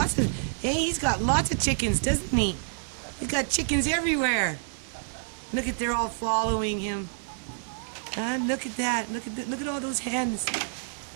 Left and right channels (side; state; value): left; silent; 59 dB below the other